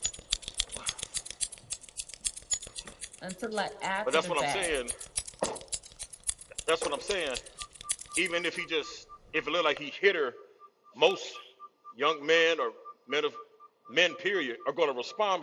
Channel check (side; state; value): both; identical; correlation 1.00